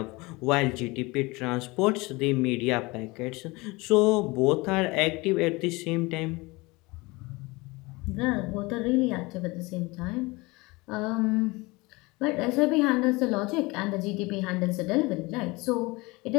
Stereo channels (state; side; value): quieter; right; 23.8 dB